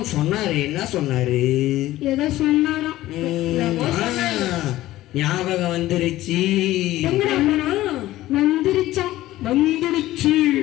சொன்னாரு. என்ன சொன்னாரு? ஏதோ சொன்னாராம். ஞாபகம் வந்துருச்சு. வந்துருச்சாம். வந்துருச்சு.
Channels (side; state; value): right; quieter; 15.7 dB